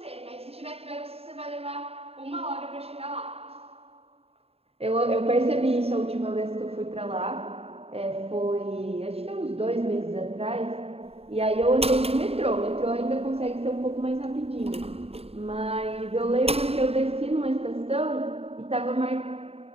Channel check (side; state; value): left; late; 0.29 ms